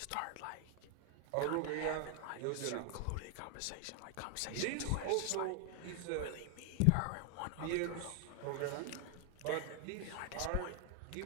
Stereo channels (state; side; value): different; both; correlation 0.00